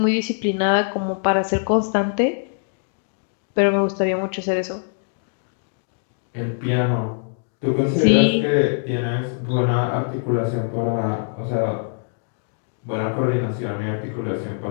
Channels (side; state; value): right; silent; digital silence